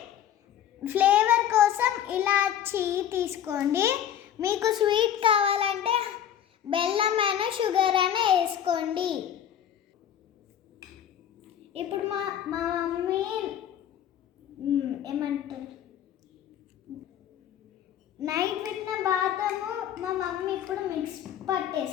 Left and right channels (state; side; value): quieter; right; 10.0 dB